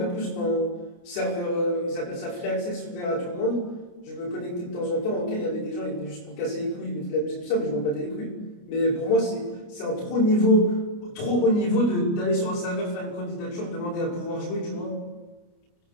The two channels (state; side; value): late; right; 29 ms